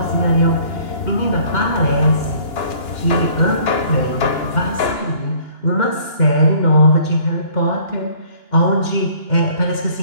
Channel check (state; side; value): late; right; 2.9 ms